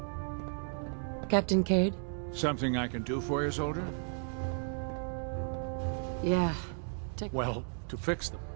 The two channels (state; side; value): silent; left; 55 dB below the other